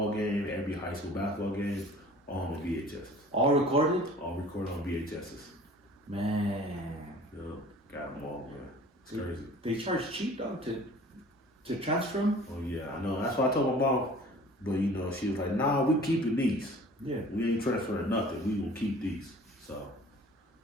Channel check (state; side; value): normal; both; correlation 0.47